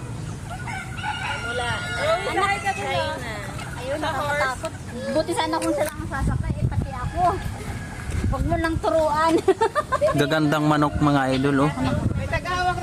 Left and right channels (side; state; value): both; identical; correlation 1.00